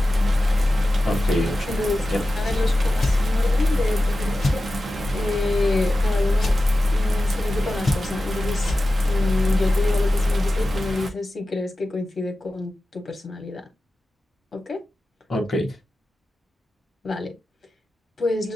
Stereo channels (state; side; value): normal; both; correlation 0.94